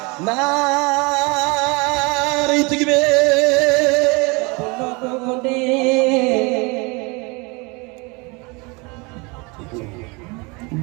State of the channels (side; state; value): left; quieter; 28.0 dB